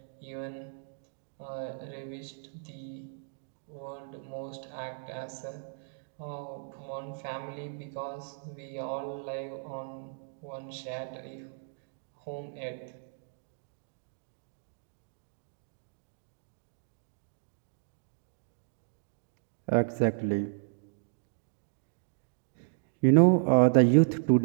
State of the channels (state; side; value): silent; left; digital silence